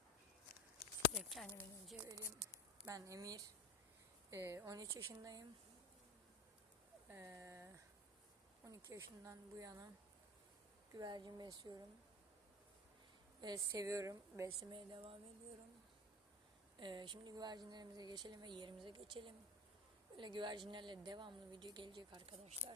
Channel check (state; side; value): normal; both; correlation 0.31